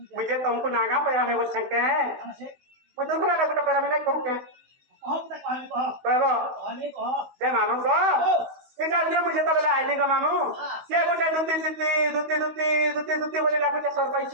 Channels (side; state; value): left; late; 16 ms